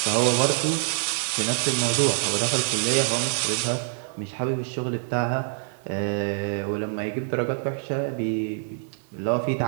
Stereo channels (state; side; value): silent; left; digital silence